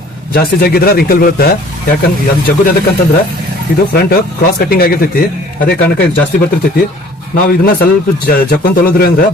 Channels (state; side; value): normal; both; correlation 0.52